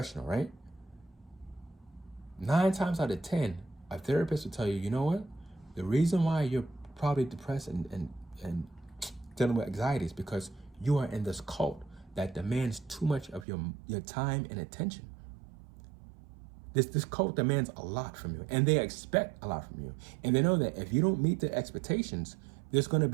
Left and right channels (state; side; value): drops out; left; at 13.5 s